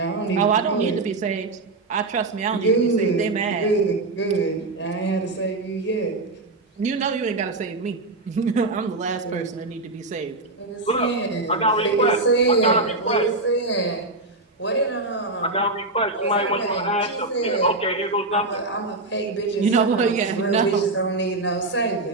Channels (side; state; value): left; quieter; 3.1 dB